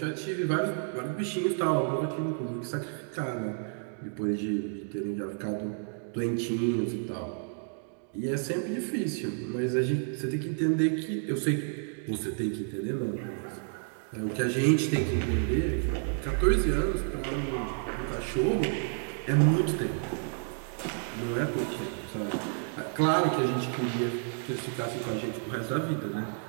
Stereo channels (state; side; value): silent; left; 57 dB below the other